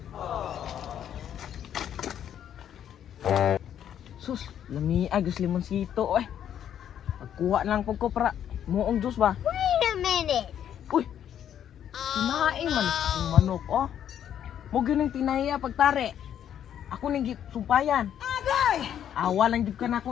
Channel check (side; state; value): right; quieter; 9.8 dB